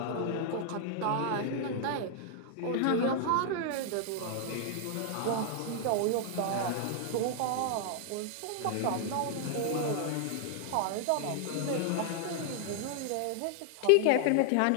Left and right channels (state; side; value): different; both; correlation 0.00